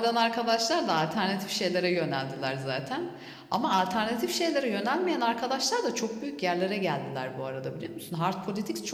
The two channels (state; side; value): identical; both; correlation 1.00